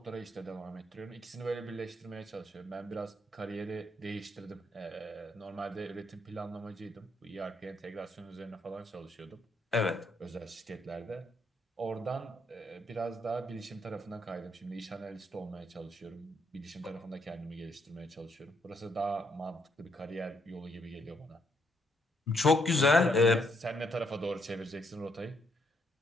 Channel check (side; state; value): both; normal; correlation 0.73